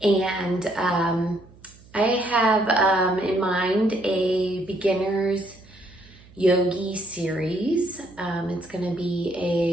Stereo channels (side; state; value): right; noise; hum, 24 dB below the sound